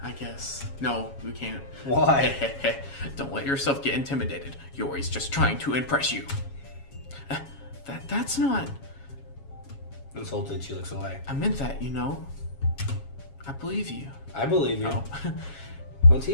I guess. No, we can't. Why? Don't let yourself get intimidated. Yuri's just trying to impress you. That's not... Insulted, she looks away. I meant that, you know. I believe you. I believe you. Oh. Well,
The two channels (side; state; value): right; late; 7.3 ms